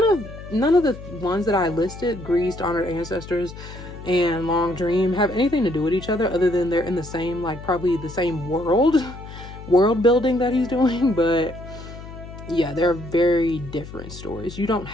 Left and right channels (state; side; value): noise; left; hum, 14 dB below the sound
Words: of the ones that I listed, Greased, Honored Ancestors, and Long Dream, have anything to do with each other other than they're in the same, like, probably the same world building that he's doing. But yeah, they're very different stories. You don't